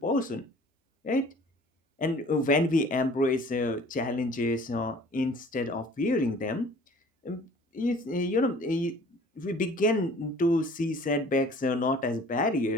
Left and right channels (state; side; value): normal; both; correlation 0.50